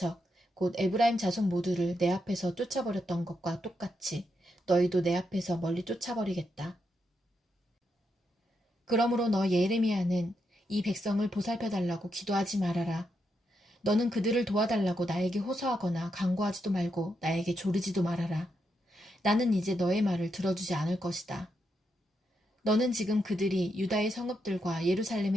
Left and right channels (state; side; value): normal; both; correlation 0.82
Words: 곧 에브라임 자손 모두를 내 앞에서 쫓아버렸던 것과 똑같이 너희도 내 앞에서 멀리 쫓아버리겠다. 그러므로 너 예레미야는 이 백성을 보살펴달라고 기도하지 말아라. 너는 그들을 도와달라고 나에게 호소하거나 간구하지도 말고 나에게 조르지도 말아라. 나는 이제 너의 말을 들어주지 않을 것이다. 너는 지금 그들이 유다의 성읍들과